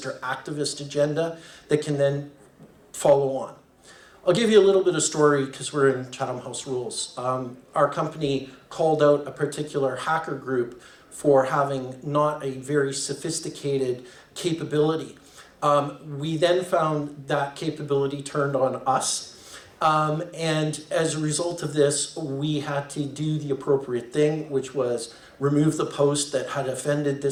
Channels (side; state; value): both; identical; correlation 1.00